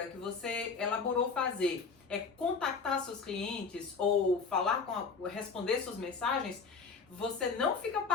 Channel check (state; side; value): quieter; right; 5.0 dB